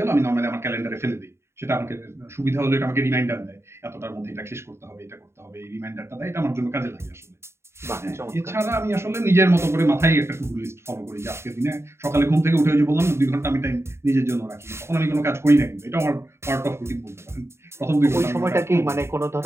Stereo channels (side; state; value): left; late; 0.13 ms